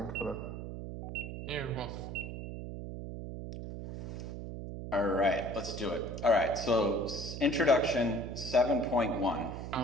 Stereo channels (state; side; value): noise; right; hum, 7 dB below the sound